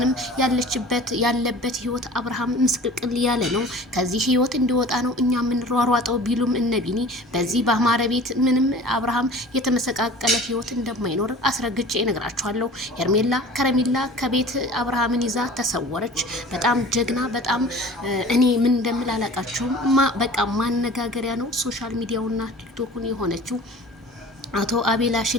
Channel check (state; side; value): normal; both; correlation 0.42